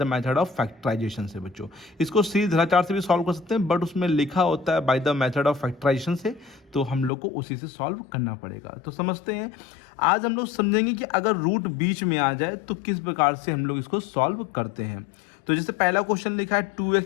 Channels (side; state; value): right; drops out; at 7.1 s